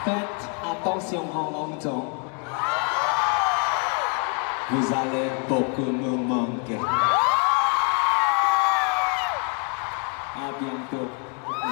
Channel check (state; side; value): quieter; right; 38.6 dB